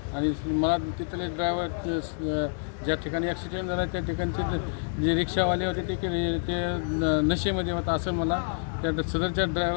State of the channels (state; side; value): silent; right; digital silence